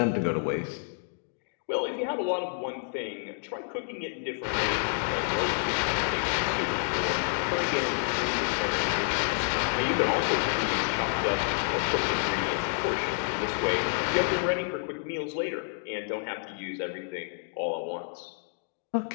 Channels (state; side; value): silent; right; digital silence